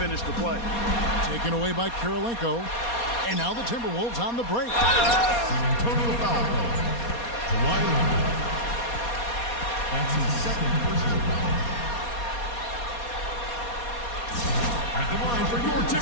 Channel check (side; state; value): right; late; 4.2 ms